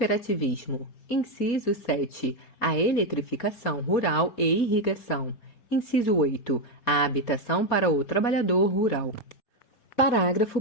Inciso 7. A eletrificação rural e irrigação. Inciso 8. A habitação para o trabalhador rural. Parágrafo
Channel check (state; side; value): late; right; 4.2 ms